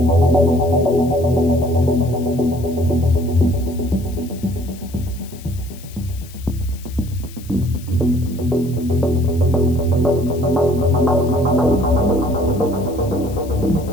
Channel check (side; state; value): left; noise; hiss, 21 dB below the sound